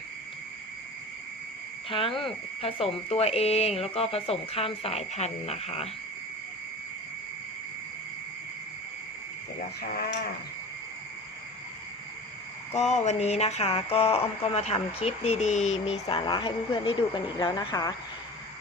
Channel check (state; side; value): normal; both; correlation 0.36